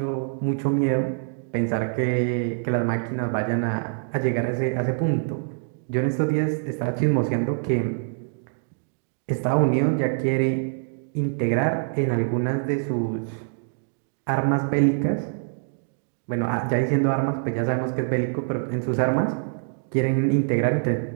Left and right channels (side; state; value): left; silent; digital silence